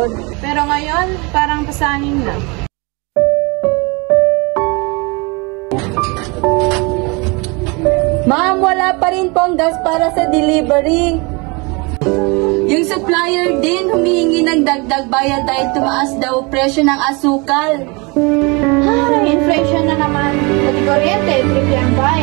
Pero ngayon, parang pasangin na. Ma'am, wala pa rin pong gas para sa delivery. Yung supplier din humihingi ng dagdag bayad dahil tumaas daw presyo ng asukal. Ay, inflation na naman. Pati kuryente, triple ang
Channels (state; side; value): quieter; left; 28.5 dB